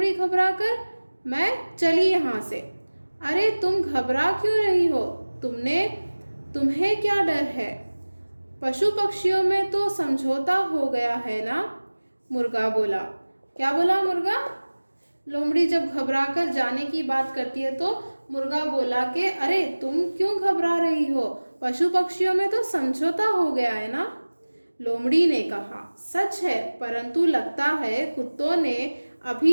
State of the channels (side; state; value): both; inverted; correlation -1.00